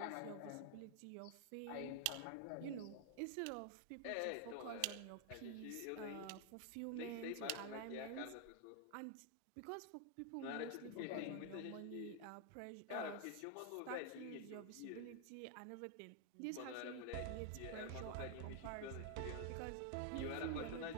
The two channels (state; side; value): different; both; correlation 0.00